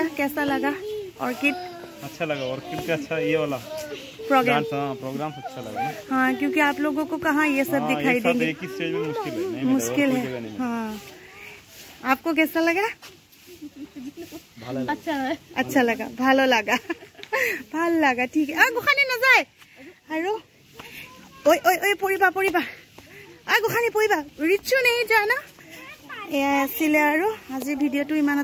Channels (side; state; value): both; identical; correlation 1.00